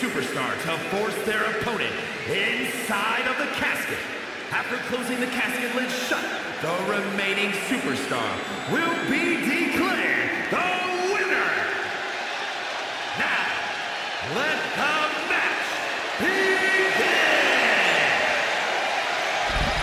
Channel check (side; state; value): both; identical; correlation 1.00